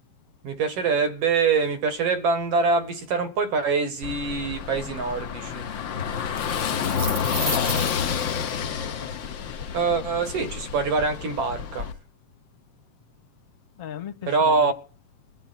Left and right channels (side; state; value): left; late; 7.6 ms